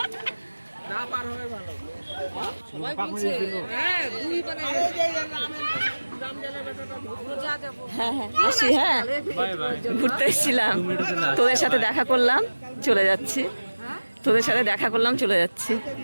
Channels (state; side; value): inverted; both; correlation -1.00